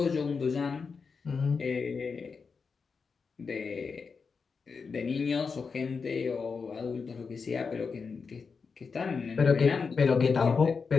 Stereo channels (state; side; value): quieter; right; 5.2 dB